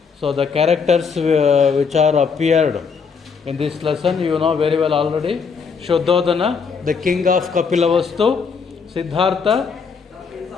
the characters which are appeared in this lesson, you know very well already. Shuddhodana, the king of Kapilavastu; Siddhartha,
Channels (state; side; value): quieter; right; 5.7 dB